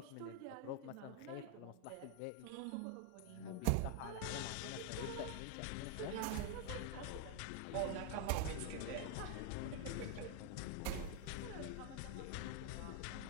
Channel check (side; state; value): both; different; correlation 0.01